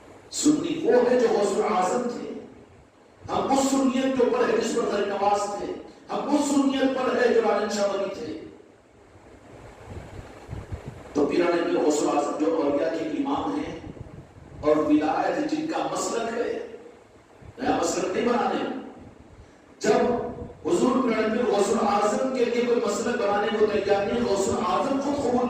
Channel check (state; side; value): identical; both; correlation 1.00